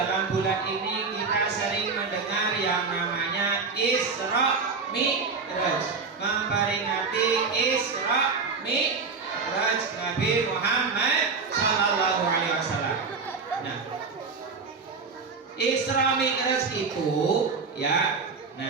bulan ini kita sering mendengar yang namanya Isra Mi'raj, memperingati Isra Mi'raj Nabi Muhammad Sallallahu Alaihi Wasallam. Nah, Isra Mi'raj itu ya,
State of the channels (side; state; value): left; quieter; 4.8 dB